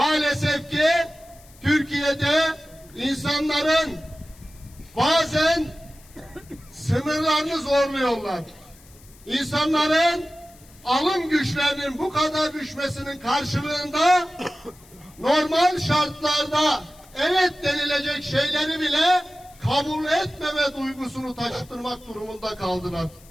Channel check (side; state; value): left; noise; hiss, 25 dB below the sound